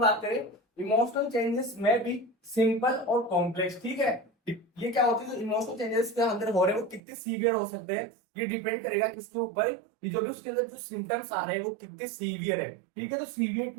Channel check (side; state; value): left; drops out; at 7.0 s